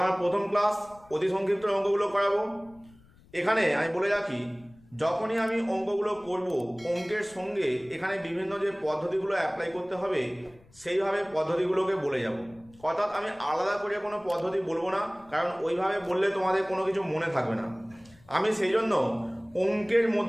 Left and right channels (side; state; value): left; noise; rumble, 27 dB below the sound